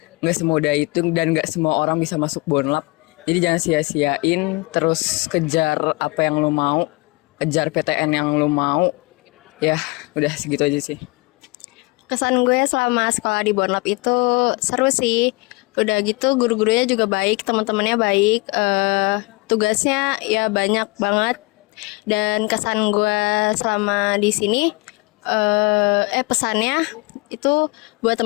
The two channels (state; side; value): quieter; right; 25.8 dB